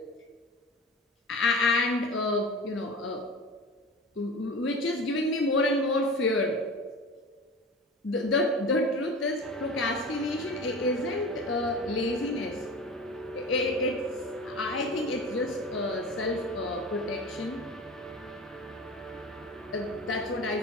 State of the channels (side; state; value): both; normal; correlation 0.34